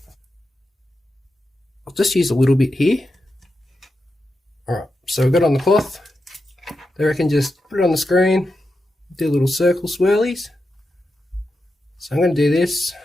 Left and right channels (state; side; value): normal; both; correlation 0.88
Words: I'll just use a little bit here. Alright, so we've got it on the cloth. They reckon just put it on the screen, do little circle swirlies. So I'm going to do this,